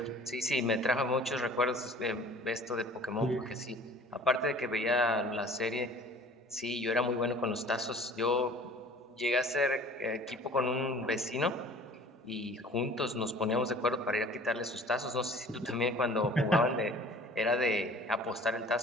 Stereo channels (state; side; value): normal; both; correlation 0.48